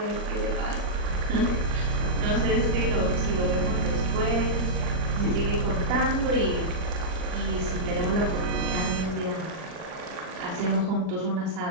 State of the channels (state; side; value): late; left; 39 ms